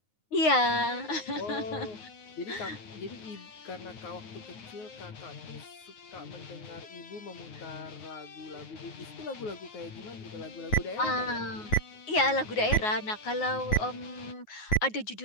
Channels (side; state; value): right; late; 9.5 ms